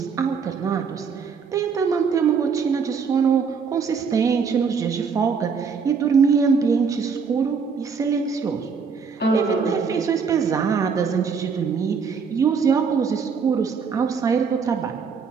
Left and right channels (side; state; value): left; quieter; 5.8 dB